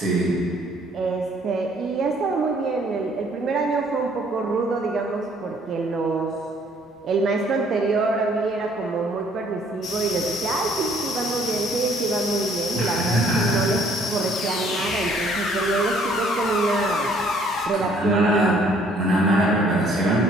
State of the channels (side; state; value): both; normal; correlation 0.61